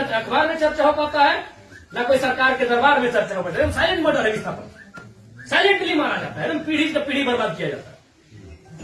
में चर्चा हो पाता है, न कोई सरकार के दरबार में चर्चा हो पाता है। साइलेंट मर्डर है विस्थापन, साइलेंटली मारा जाता है, एकदम पीढ़ी से पीढ़ी बर्बाद किया जाता है।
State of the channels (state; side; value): identical; both; correlation 1.00